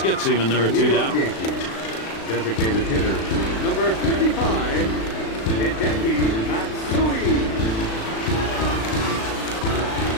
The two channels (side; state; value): right; late; 36 ms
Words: gets him, and there are 2 down. Designated hitter, number 55, Hideki Matsui.